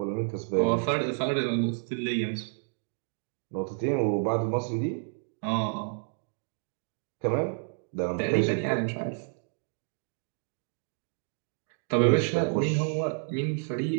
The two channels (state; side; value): silent; left; 56 dB below the other